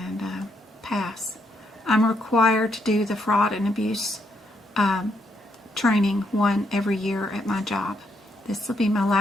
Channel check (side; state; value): both; normal; correlation 0.76